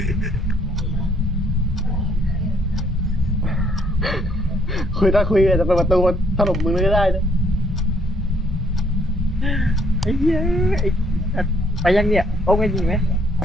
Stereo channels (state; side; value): normal; both; correlation 0.67